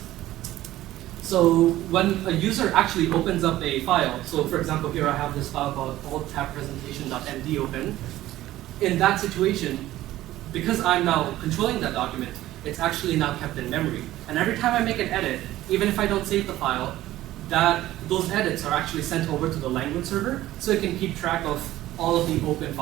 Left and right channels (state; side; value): quieter; left; 15.1 dB